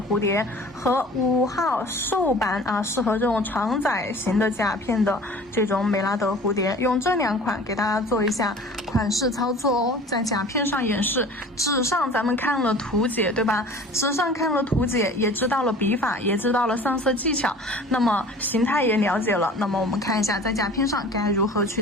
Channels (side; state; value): both; normal; correlation 0.44